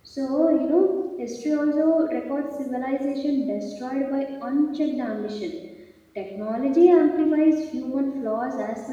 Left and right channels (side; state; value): both; identical; correlation 1.00